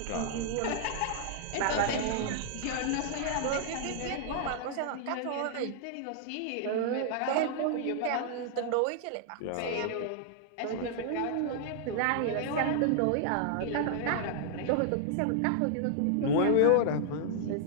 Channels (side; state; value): both; different; correlation -0.01